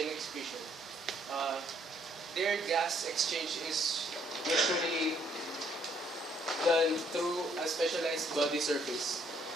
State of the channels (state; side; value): normal; both; correlation 0.67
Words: excretion. Uh, their gas exchange is usually done through a specialized body surface.